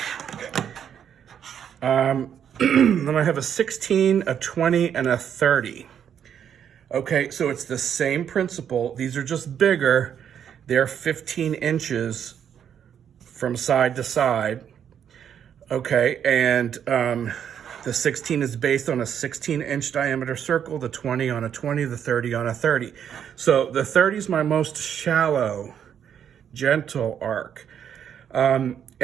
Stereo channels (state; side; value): quieter; left; 8.7 dB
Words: Then I have a 16, a 20, and a 30. Okay, so it's the same principle. These are just bigger. They're 15 inches from side to side. Okay, and the 16 is based on a 16-inch diameter circle, the 20 on a 20, the 30 on a 30. So the 30 is my most shallow, gentle arc.